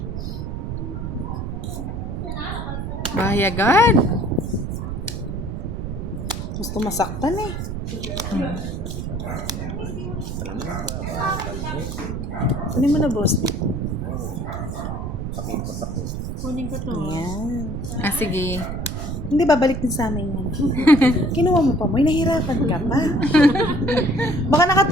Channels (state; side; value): noise; right; rumble, 5 dB below the sound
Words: Bahayagan. Gusto masaktan eh. Kunin mo na, boss. Kunin ko to. Ayan. Ah, sige. Hindi, babalik din sa amin yan. Kinuha mo pa mo, nahihirapan ka pa. Baka